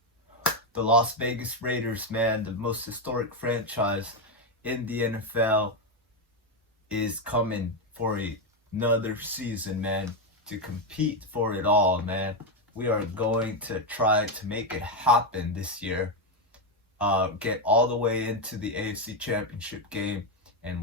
the Las Vegas Raiders, man, the most historic franchise in the NFL is coming for another season, man, to compete for it all, man. We are going to try to make it happen this year. Get all the way into the AFC Championship game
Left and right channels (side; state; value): both; normal; correlation 0.06